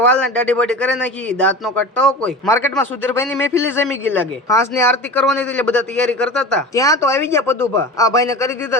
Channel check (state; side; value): normal; both; correlation 0.32